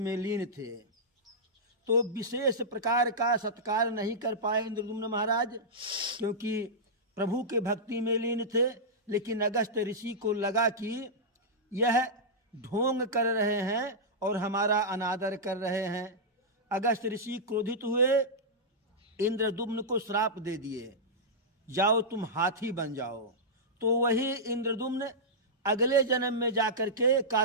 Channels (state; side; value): normal; both; correlation -0.11